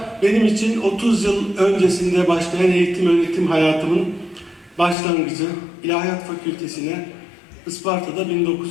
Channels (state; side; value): drops out; right; at 5.0 s